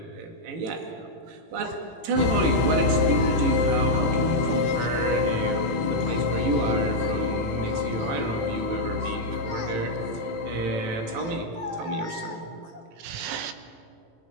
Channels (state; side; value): late; left; 18 ms